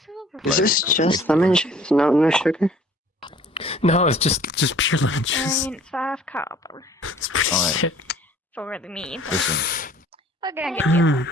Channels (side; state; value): both; normal; correlation 0.52